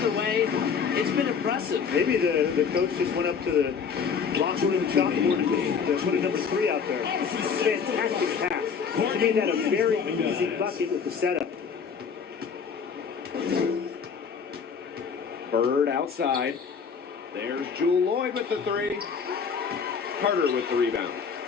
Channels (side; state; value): right; quieter; 6.3 dB